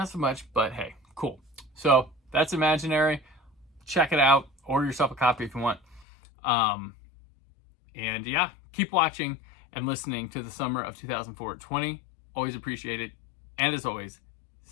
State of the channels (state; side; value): drops out; right; at 6.1 s